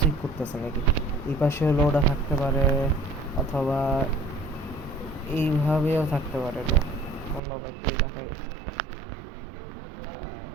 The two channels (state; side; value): drops out; left; at 7.4 s